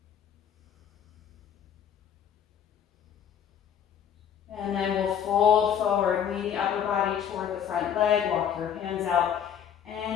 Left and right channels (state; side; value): quieter; right; 8.7 dB